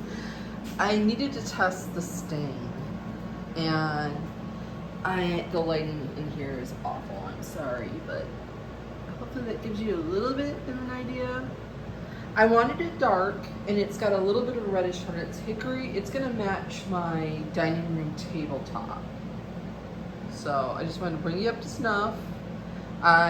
needed to test the stain, and the lighting in here is awful. I'm sorry, but hopefully that gives you a little bit of an idea. I wanted it dark, and it's got a little bit of a reddish tone. It's hickory. It's gonna match my dining room tabletop. So I just wanted to bring you up to snuff.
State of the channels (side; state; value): both; identical; correlation 1.00